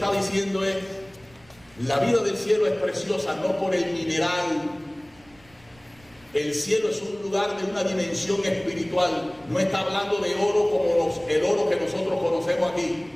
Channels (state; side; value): noise; right; rumble, 28 dB below the sound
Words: diciendo es, la vida del cielo es preciosa no por el mineral. El cielo es un lugar de una dimensión espiritual. No está hablando de oro como el oro que nosotros conocemos aquí.